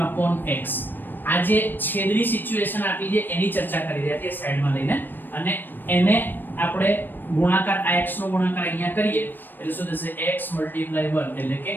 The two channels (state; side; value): late; right; 0.093 ms